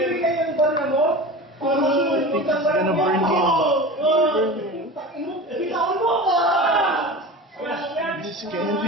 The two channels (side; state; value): both; normal; correlation 0.32